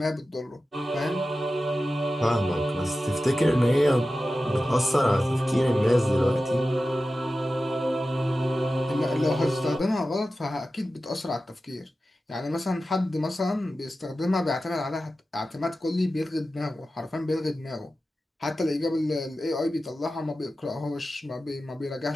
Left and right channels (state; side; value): normal; both; correlation 0.94